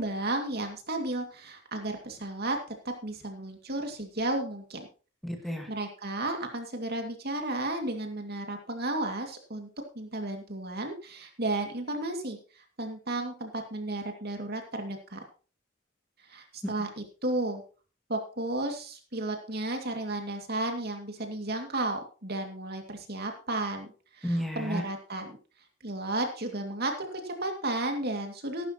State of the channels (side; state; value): both; normal; correlation 0.08